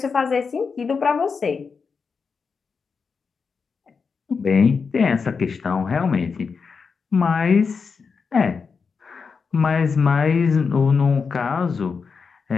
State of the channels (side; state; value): right; quieter; 5.3 dB